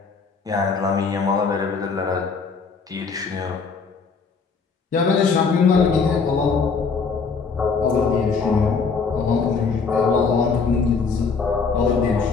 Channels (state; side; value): quieter; right; 5.1 dB